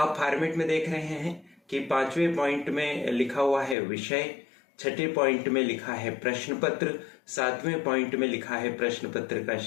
फॉर्मेट में देख रहे हैं कि 5वें पॉइंट में लिखा हुआ है विषय, 6ठे पॉइंट में लिखा है प्रश्न पत्र, 7वें पॉइंट में लिखा है प्रश्न पत्र का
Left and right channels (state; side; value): drops out; right; at 3.8 s